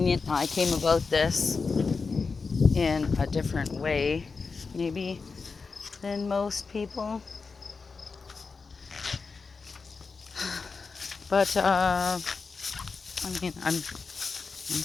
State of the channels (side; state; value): right; quieter; 4.7 dB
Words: I came about this in a different way, maybe, than most people. But, I mean, I'm